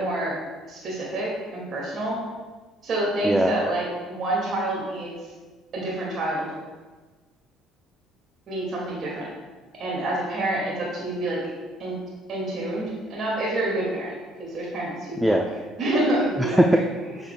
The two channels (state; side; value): normal; both; correlation 0.67